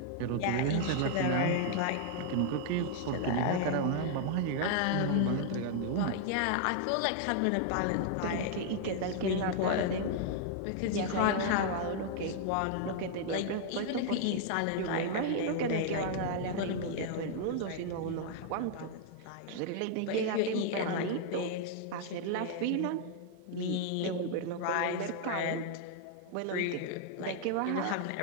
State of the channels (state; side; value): different; both; correlation 0.00